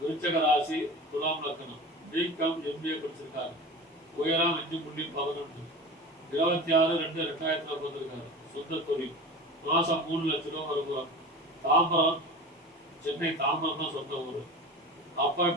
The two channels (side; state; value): both; normal; correlation 0.33